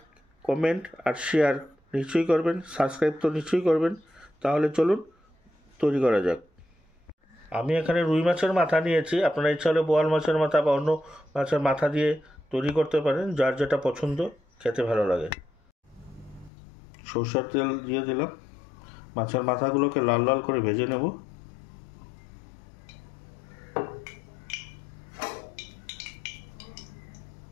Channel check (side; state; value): right; drops out; at 16.5 s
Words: কমেন্ট আর শেয়ার নিশ্চয়ই করবেন, সাবস্ক্রাইব তো নিশ্চয়ই করবেন। তাহলে চলুন তৈরি করা যাক। আমি এখানে রুই মাছের মাথা নিয়েছি। আপনারা ইচ্ছা হলে বোয়াল মাছের মাথা বা অন্য মাছের মাথা দিয়ে তৈরি করতে পারেন, যার যেটা পছন্দ, খেতে ভালো লাগে। সরষের তেল দিয়ে দিলাম। মাছের মাথাগুলোকে লাল লাল করে ভেজে নেব।